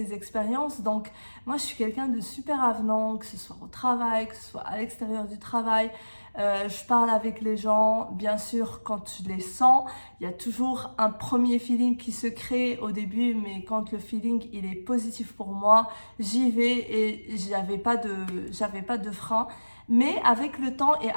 expériences. Donc moi, je suis quelqu'un de super avenant, que ce soit au travail, que ce soit à l'extérieur du travail. Je parle avec les gens, bien sûr, quand je les sens. Il y a toujours un premier feeling qui se crée au début, mais quand le feeling il est positif pour moi, j'y vais et j'avais pas de frein. Mais avec le temps et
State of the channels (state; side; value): inverted; both; correlation -1.00